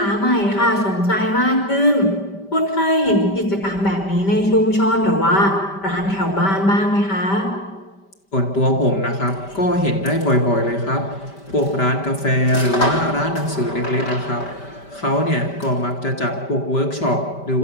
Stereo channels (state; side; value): late; right; 5.1 ms